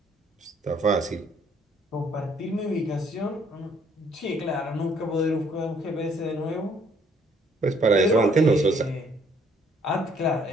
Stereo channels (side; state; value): both; normal; correlation 0.64